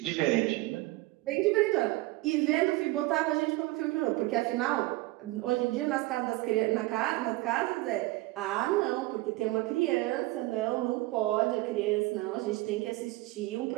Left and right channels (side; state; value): left; quieter; 19.7 dB